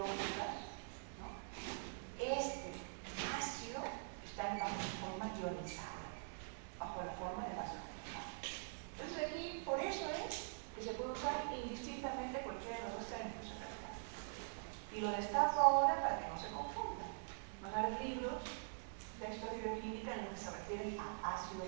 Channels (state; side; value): silent; left; digital silence